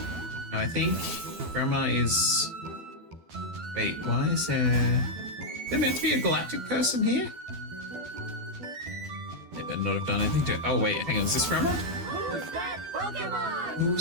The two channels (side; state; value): left; late; 12 ms